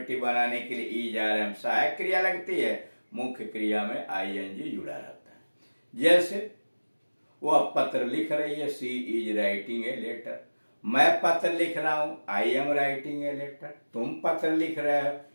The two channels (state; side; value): inverted; both; correlation -1.00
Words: बनाने के लिए इज आर एम सहायक क्रिया लगती है, मुख्य क्रिया में आईएनजी जुड़ा रहता है। जैसे वह पत्र लिख रही है, she is writing a letter. मैं पत्र लिख रहा हूं, I am writing a letter. तुम पत्र लिख रहे हो,